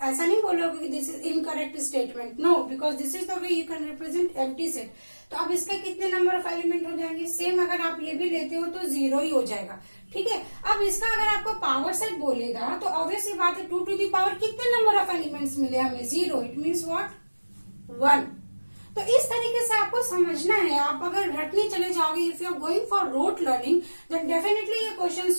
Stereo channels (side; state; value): both; inverted; correlation -1.00